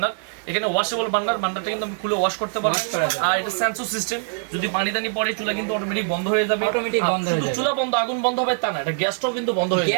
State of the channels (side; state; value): left; silent; digital silence